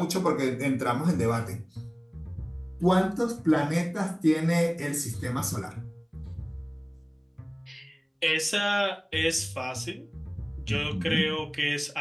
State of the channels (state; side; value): identical; both; correlation 1.00